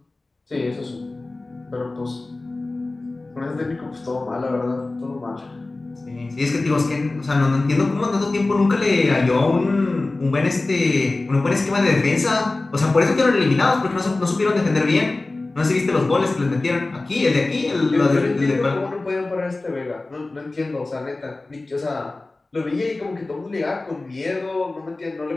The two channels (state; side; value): quieter; right; 3.1 dB